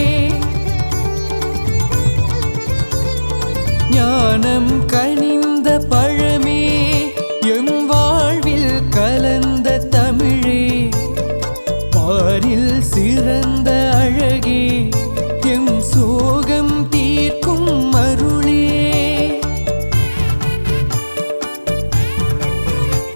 ஞானம் கனிந்த பழமே எம் வாழ்வில் கலந்த தமிழே பாரில் சிறந்த அழகே எம் சோகம் தீர்க்கும் அருளே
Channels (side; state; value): both; inverted; correlation -1.00